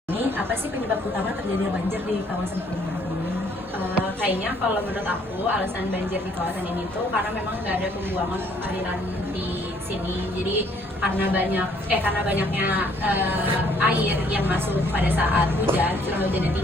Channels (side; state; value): both; normal; correlation 0.63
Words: Ini apa sih penyebab utama terjadinya banjir di kawasan perumahan ini? Kayaknya kalau menurut aku alasan banjir di kawasan ini tuh karena memang nggak ada pembuangan aliran di sini. Jadi karena banyaknya air yang masuk pada saat hujan, curah hujannya